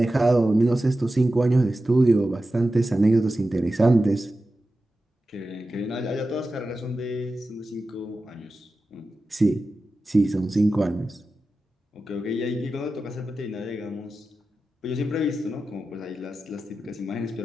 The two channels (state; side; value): normal; both; correlation 0.93